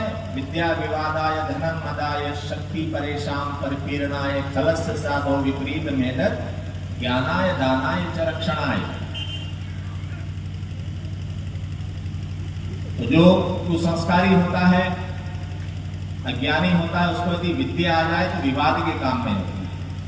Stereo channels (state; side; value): identical; both; correlation 1.00